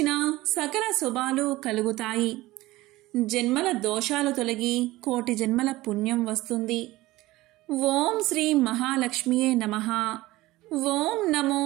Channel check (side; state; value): left; quieter; 18.4 dB